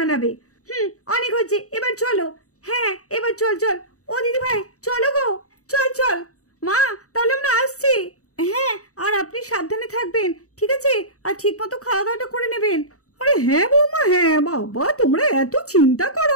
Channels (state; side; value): late; right; 0.65 ms